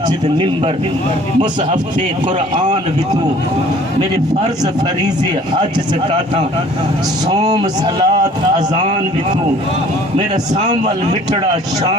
منبر مصحف قرآن بھی تو، میرے فرض فریضے حج زکاتاں صوم صلاۃ اذان بھی تو، میرا سامول مٹھڑا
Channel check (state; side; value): normal; both; correlation 0.52